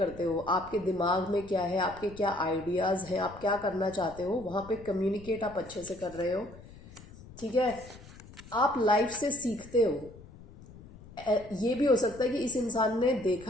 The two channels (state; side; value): noise; left; rumble, 19 dB below the sound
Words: हो, आपके दिमाग में क्या है, आपके क्या आइडियाज़ हैं, आप क्या करना चाहते हो, वहाँ पे कम्युनिकेट आप अच्छे से कर रहे हो, ठीक है। आप लाइफ से सीखते हो, ये भी हो सकता है कि इस इंसान ने